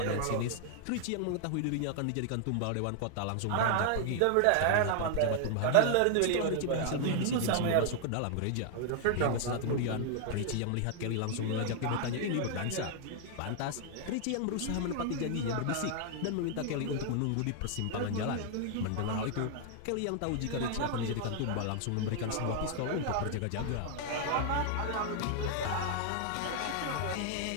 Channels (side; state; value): both; different; correlation 0.00